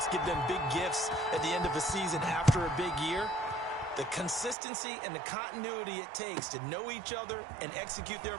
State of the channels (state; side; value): drops out; left; at 4.5 s